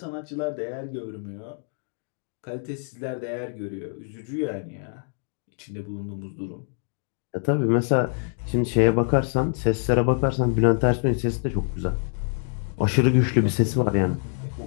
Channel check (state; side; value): silent; right; 61 dB below the other